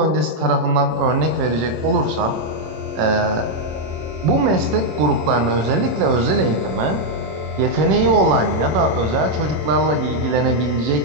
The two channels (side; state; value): left; late; 26 ms